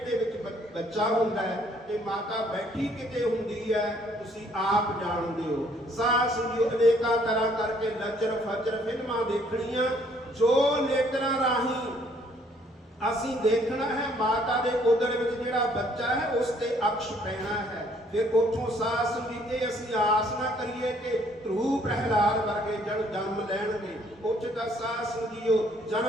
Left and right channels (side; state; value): both; normal; correlation 0.64